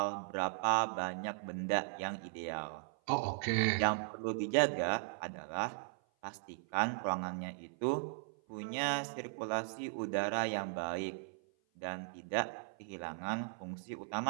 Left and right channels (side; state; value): left; silent; 53 dB below the other